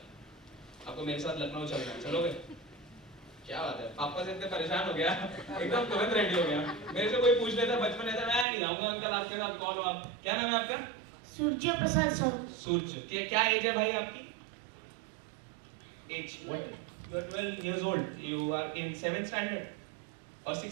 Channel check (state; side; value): drops out; left; at 8.5 s